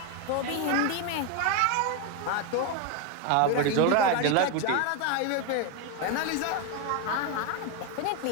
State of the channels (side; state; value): both; different; correlation 0.02